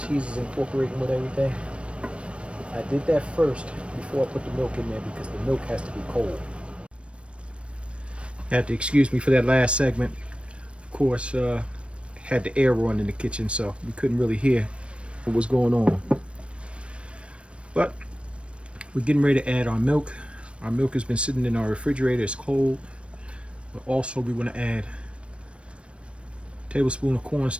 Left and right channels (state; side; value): late; left; 0.059 ms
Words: is incorporating with everything? I did that first before I put the milk in there because the milk has to be cold. You have to excuse me for that last segment. Of course, had the air on in the kitchen, so we couldn't really hear what was going on. But we're getting ready to add our milk. Our milk has been sitting in our refrigerator, it's cold. But also we want to add a tablespoon of